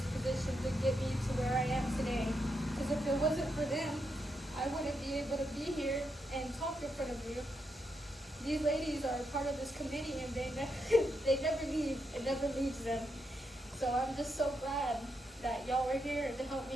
position to get me to where I am today. Because if it wasn't for them, I wouldn't be able to be here and talk in front of you. These ladies are part of this committee, and they never leave. It never leaves them. So I'm just so glad that y'all are here to help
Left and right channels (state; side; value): normal; both; correlation 0.82